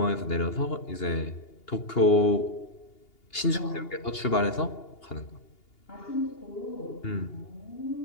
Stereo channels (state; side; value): late; right; 2.8 ms